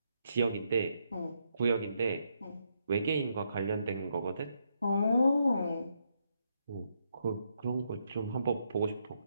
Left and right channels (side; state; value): both; inverted; correlation -0.78